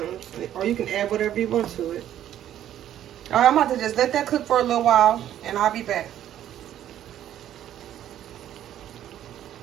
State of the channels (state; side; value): quieter; left; 11.4 dB